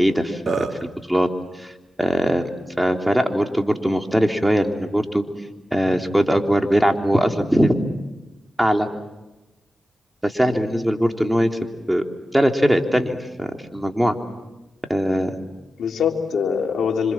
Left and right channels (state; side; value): normal; both; correlation 0.94